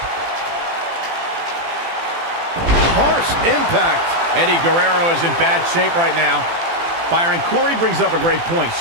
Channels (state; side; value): late; left; 18 ms